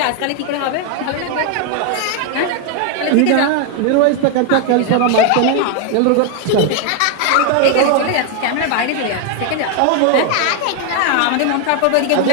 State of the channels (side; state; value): both; different; correlation 0.01